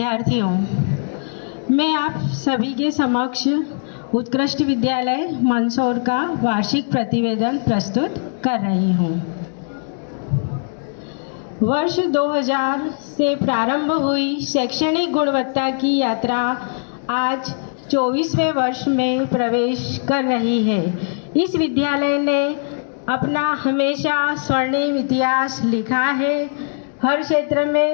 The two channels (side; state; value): right; silent; digital silence